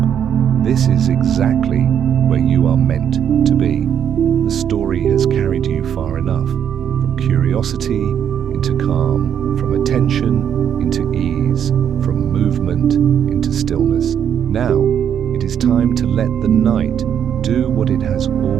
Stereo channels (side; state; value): left; quieter; 8.8 dB